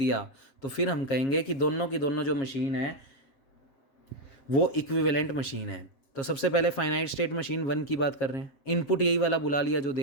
तो फिर हम कहेंगे कि दोनों की दोनों जो मशीन है वो इक्विवेलेंट मशीन है। तो सबसे पहले फाइनाइट स्टेट मशीन 1 की बात कर रहे हैं। इनपुट यही वाला बुला लिया जो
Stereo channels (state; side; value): late; right; 7.4 ms